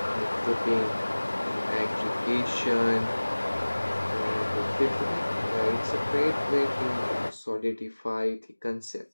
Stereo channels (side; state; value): both; inverted; correlation -1.00